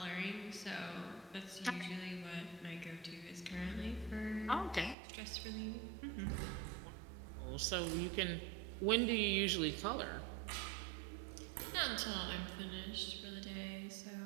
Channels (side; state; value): left; drops out; at 5.0 s